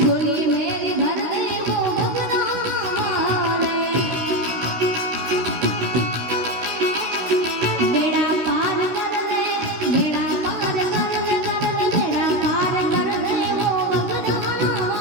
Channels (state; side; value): late; left; 16 ms